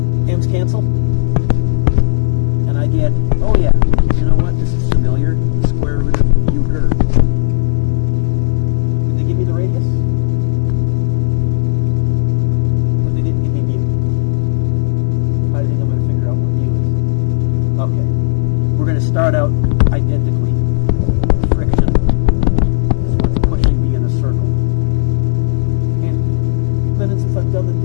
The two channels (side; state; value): right; silent; digital silence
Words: m's cancel, and I get, oh yeah, you know what? This is familiar. The square root of mu ger. Did they give me the radius? But they didn't give me mu. How do you think I'm going to figure out what mu is? Okay. We're going to start out identically. Friction is what's pushing me in a circle. And then since I've done the